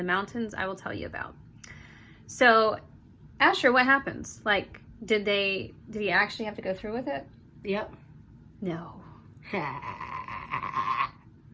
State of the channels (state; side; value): identical; both; correlation 1.00